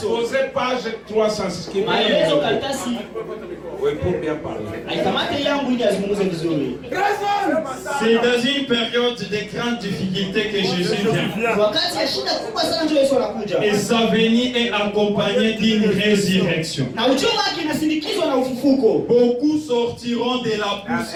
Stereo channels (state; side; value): identical; both; correlation 1.00